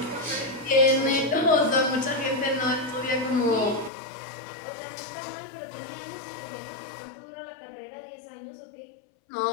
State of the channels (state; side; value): drops out; right; at 3.9 s